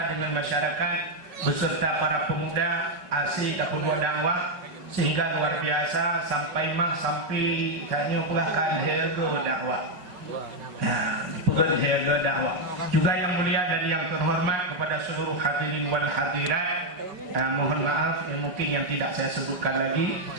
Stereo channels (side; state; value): left; late; 5.3 ms